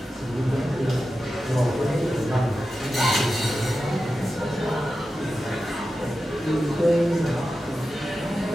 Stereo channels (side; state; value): both; normal; correlation 0.92